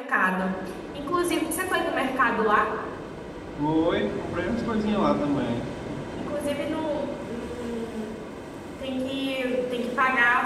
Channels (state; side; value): identical; both; correlation 1.00